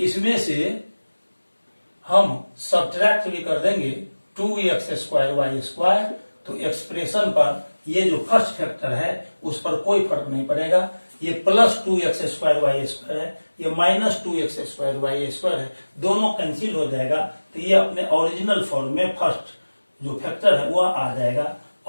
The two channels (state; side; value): inverted; both; correlation -1.00